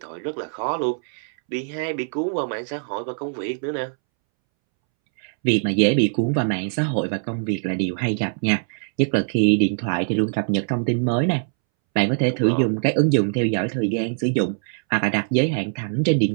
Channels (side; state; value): left; silent; 64 dB below the other